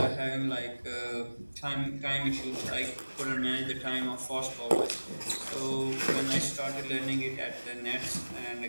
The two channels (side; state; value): both; inverted; correlation -1.00